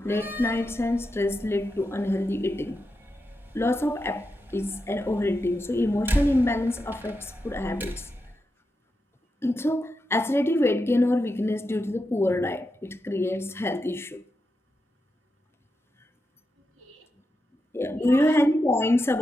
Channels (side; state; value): both; normal; correlation 0.87